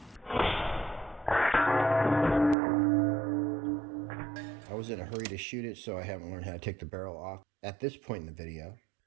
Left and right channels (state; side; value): drops out; left; at 2.6 s